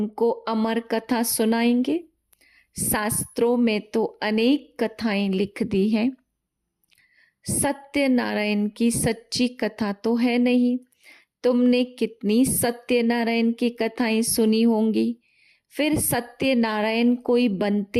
अमर कथा सुनाएंगे? शास्त्रों में तो अनेक कथाएं लिख दी हैं। सत्यनारायण की सच्ची कथा तो है नहीं। तुमने कितनी सत्यनारायण की कथाएं सुनी होंगी। फिर सत्यनारायण कोई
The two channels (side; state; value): both; identical; correlation 1.00